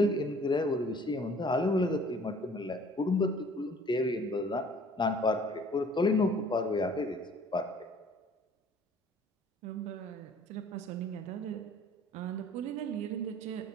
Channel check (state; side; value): normal; both; correlation 0.53